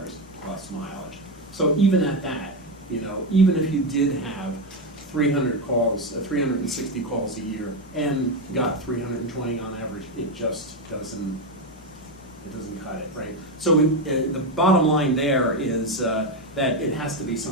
plus mileage. So even at that, even if you did have 360 calls a year and got 320 on average, it just doesn't cut it, right? So the bottom line there is that it has to be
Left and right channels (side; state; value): both; normal; correlation 0.10